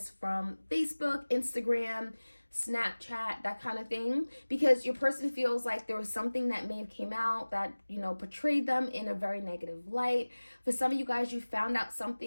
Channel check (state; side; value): inverted; both; correlation -1.00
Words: from Facebook, Instagram, Snapchat, that kind of thing, because your person feels like there was something that may have came out that, you know, portrayed them in a very negative light. For some of you guys, you found out